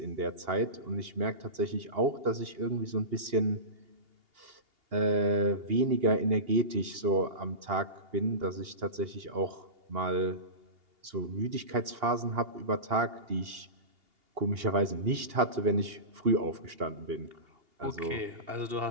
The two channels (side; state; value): left; late; 2.8 ms